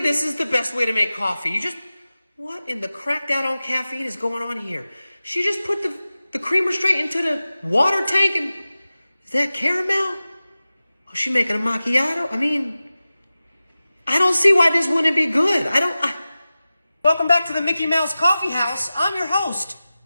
is the best way to make coffee. You just... What in the cracked out on caffeine is going on here? She just put the creamer straight into the water tank and... Is that caramel? Oh, she making a macchiato? I mean... I don't see why this wouldn't be good. Welcome back to the Mickey Mouse Coffee House. I'm your host.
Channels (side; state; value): both; inverted; correlation -0.95